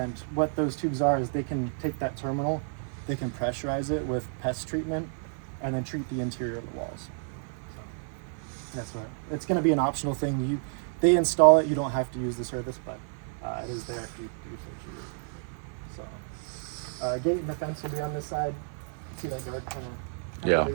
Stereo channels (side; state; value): left; silent; digital silence